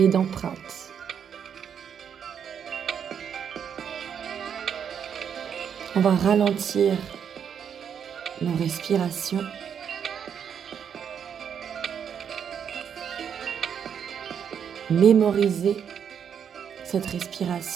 d'empreinte. On va ralentir nos respirations. Mémoriser cette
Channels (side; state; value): left; quieter; 7.9 dB